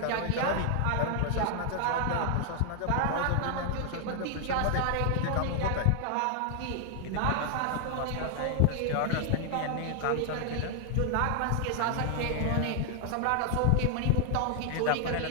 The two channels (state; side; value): different; both; correlation 0.00